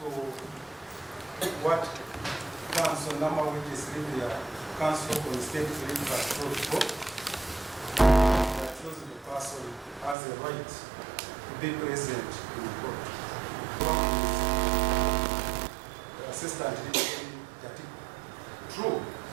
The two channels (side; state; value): left; drops out; at 10.2 s